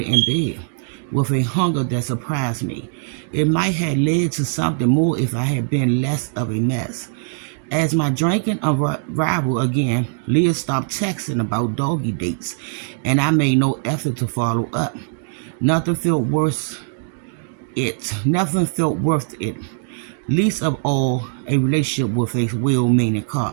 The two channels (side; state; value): left; silent; 65 dB below the other